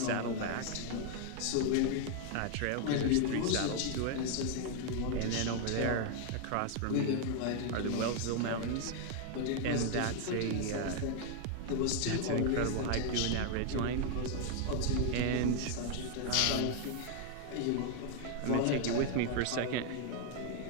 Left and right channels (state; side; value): different; both; correlation 0.00